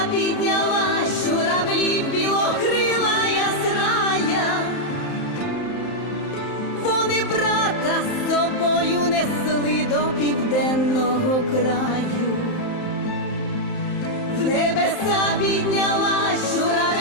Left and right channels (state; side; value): late; right; 31 ms